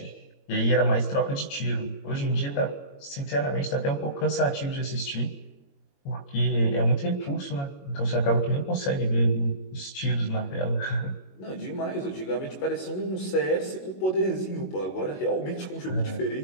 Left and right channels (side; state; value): right; late; 21 ms